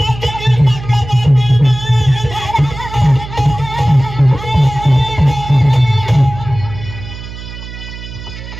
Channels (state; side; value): noise; right; hum, 12 dB below the sound